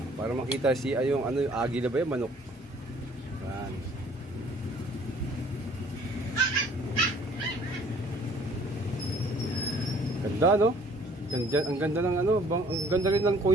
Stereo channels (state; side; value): normal; both; correlation 0.57